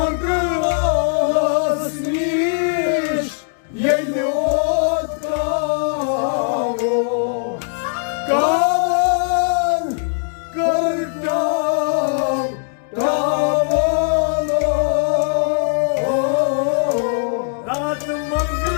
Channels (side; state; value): right; silent; 66 dB below the other